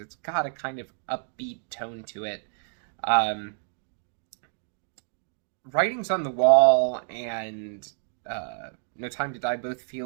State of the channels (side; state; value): left; silent; digital silence